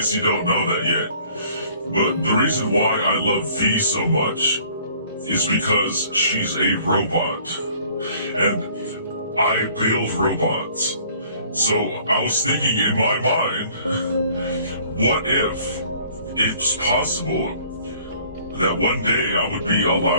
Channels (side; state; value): both; inverted; correlation -0.56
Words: you don't know that yet. But the reason why I love V so much is because she's a robot. And I build robots. So I was thinking in my mind, what if it's possible that one day I would be